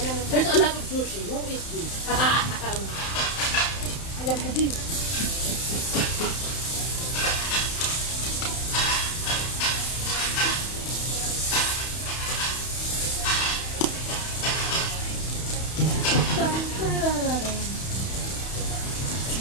There's a lot of sushi. Who is this? Alam ko din.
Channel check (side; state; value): right; late; 31 ms